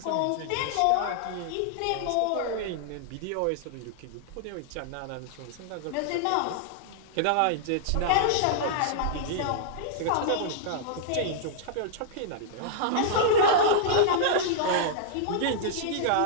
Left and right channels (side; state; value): both; different; correlation -0.01